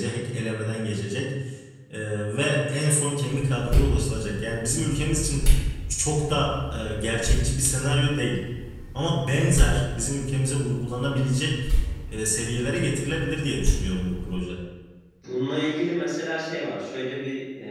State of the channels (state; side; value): identical; both; correlation 1.00